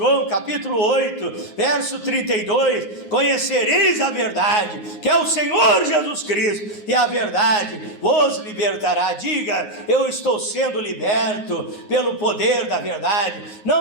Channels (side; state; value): right; late; 9.5 ms